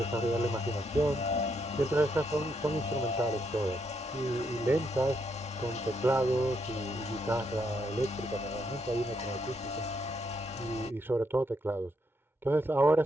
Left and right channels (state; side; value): normal; both; correlation 0.77